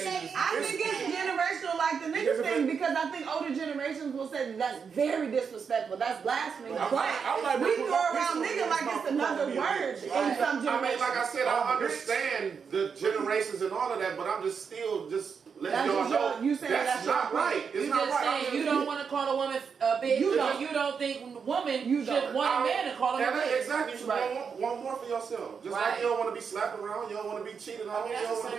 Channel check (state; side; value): quieter; left; 6.2 dB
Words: I think it's generational like the nigga thing because I think older generations will say that's very disrespectful. That's blasphemy. But we throw around nigga like it's another word in some generations. I mean, like I said, I understand the generations and all of that, but I'm just still letting y'all know that's not right. It's not right. Saying you don't want to call a woman a bitch. You don't think woman should want a man to call her a bitch. Exactly. You should want more for yourself. Just like you don't want to be slapped around, you don't want to be cheated on. You don't want